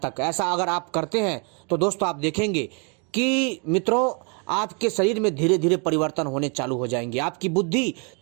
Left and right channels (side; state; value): left; quieter; 35.9 dB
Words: ऐसा अगर आप करते हैं तो दोस्तों आप देखेंगे कि मित्रों आपके शरीर में धीरे धीरे परिवर्तन होने चालू हो जाएंगे, आपकी बुद्धि